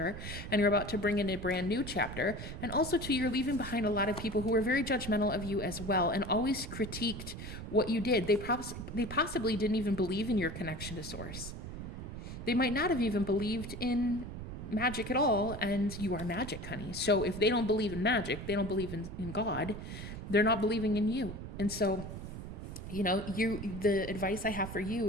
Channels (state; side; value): noise; right; rumble, 8 dB below the sound